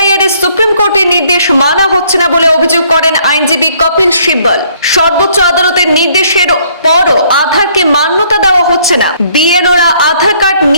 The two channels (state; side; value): inverted; both; correlation -0.64